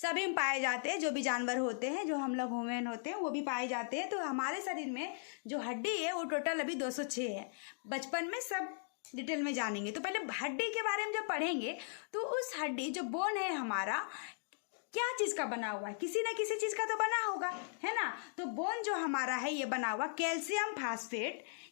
में पाए जाते हैं, जो भी जानवर होते हैं, जो हम लोग ह्यूमन होते हैं वो भी पाए जाते हैं। तो हमारे शरीर में जो हड्डी है वो टोटल अभी 206 है। बचपन में सब डिटेल में जानेंगे। तो पहले हड्डी के बारे में जब पढ़ेंगे तो उस हड्डी जो बोन है हमारा क्या चीज का बना हुआ है, किसी न किसी चीज का तो बना होगा, है ना। तो बोन जो हमारा है ये बना हुआ कैल्शियम फास्फेट,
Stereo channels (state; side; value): silent; right; digital silence